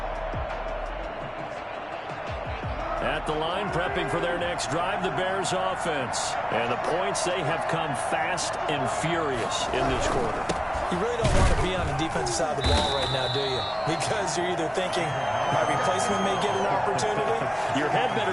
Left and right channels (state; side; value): identical; both; correlation 1.00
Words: At the line, prepping for their next drive, the Bears offense. And the points, they have come fast and furious in this quarter. You really don't want to be on the defensive side of the ball right now, do you? Because you're either thinking, my replacement may get an opportunity. Your head